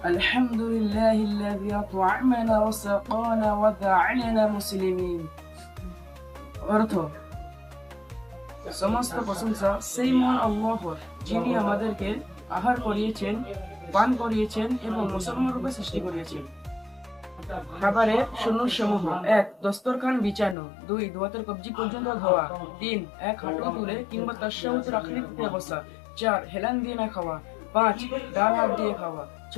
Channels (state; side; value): drops out; right; at 20.6 s